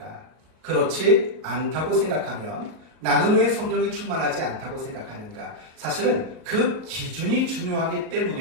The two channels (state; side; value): late; left; 38 ms